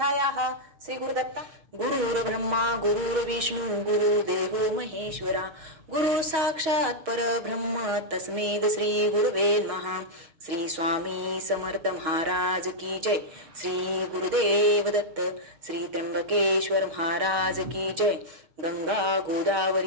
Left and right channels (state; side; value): late; left; 6.7 ms